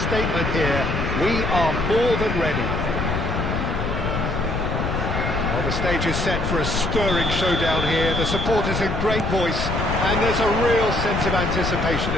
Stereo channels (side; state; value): left; noise; rumble, 2 dB below the sound